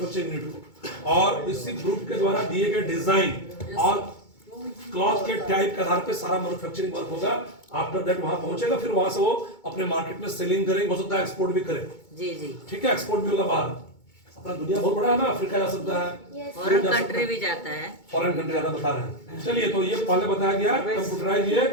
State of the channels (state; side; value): late; right; 2.2 ms